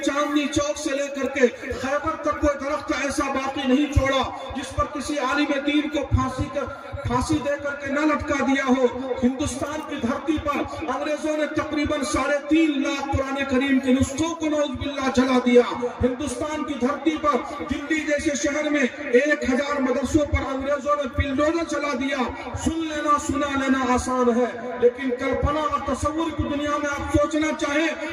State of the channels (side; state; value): both; identical; correlation 1.00